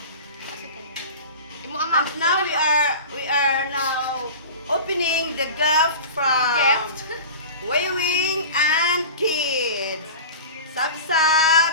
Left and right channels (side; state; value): both; inverted; correlation -0.35